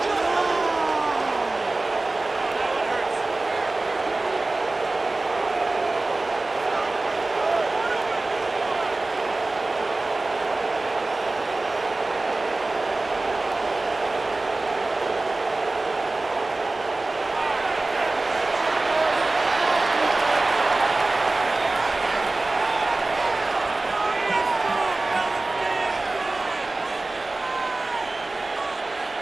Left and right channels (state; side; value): quieter; left; 3.1 dB